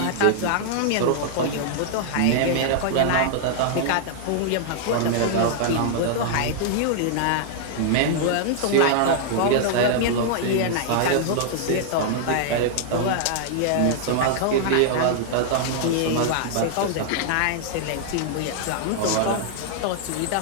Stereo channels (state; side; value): different; both; correlation -0.01